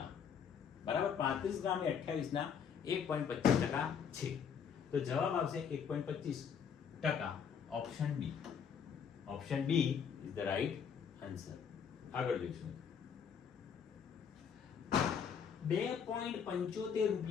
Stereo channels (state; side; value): quieter; right; 7.2 dB